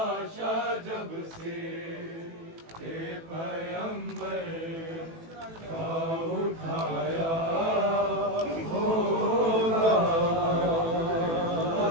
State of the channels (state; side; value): late; left; 18 ms